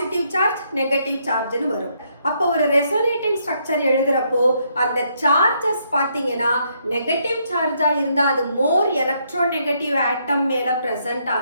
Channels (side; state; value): both; inverted; correlation -0.74